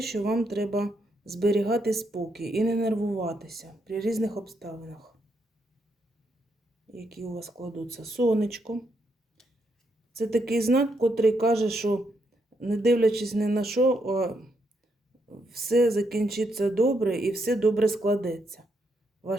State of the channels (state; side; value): normal; both; correlation 0.78